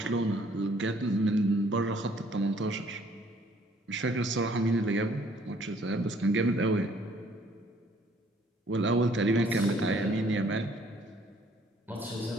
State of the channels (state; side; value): normal; both; correlation 0.61